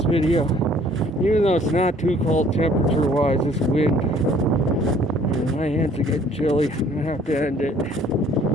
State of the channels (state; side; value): normal; both; correlation 0.57